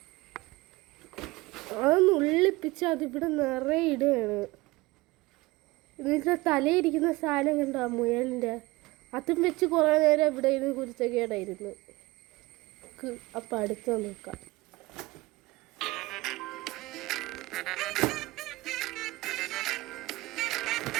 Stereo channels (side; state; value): left; quieter; 21.2 dB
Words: അത് നുള്ളിപ്പിച്ച് അതിവിടെ നിറയെ ഇടുകയാണ്. ഇതിൻ്റെ തലയിരിക്കുന്ന സാധനം കണ്ടോ, മുയലിൻ്റെ, അതും വെച്ച് കുറേ നേരം ഇവിടെ ഇരുന്ന് കുരുത്തക്കേടായിരുന്നു. അപ്പം അടുത്ത് നോക്കാം.